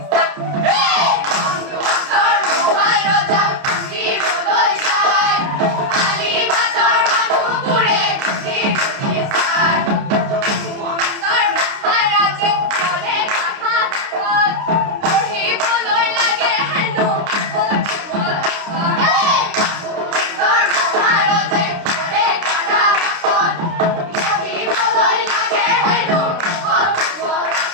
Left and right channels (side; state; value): left; late; 29 ms